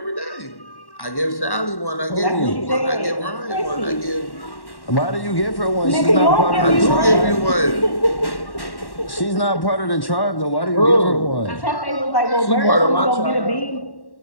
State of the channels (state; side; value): late; right; 1.1 ms